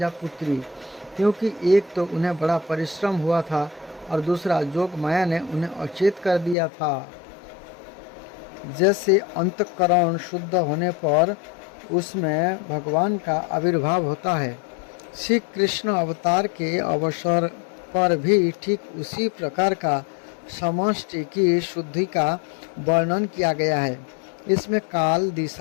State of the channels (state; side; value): drops out; right; at 6.6 s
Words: पुत्री, क्योंकि एक तो उन्हें बड़ा परिश्रम हुआ था और दूसरा जोग माया ने उन्हें अचेत कर दिया था। जैसे अंतःकरण शुद्ध होने पर उसमें भगवान का आविर्भाव होता है, श्री कृष्ण अवतार के अवसर पर भी ठीक उसी प्रकार का समष्टि की शुद्धि का वर्णन किया गया है। इसमें काल,